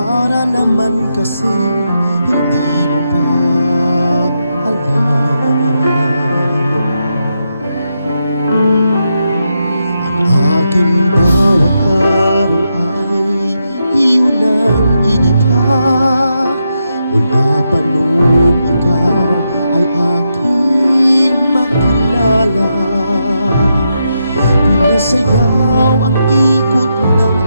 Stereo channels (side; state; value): both; inverted; correlation -0.84